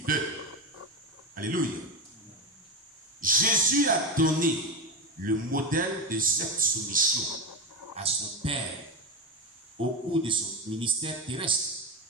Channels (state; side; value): normal; both; correlation 0.17